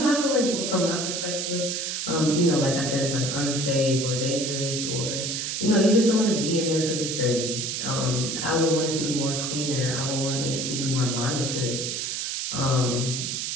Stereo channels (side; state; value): right; noise; hiss, 2 dB below the sound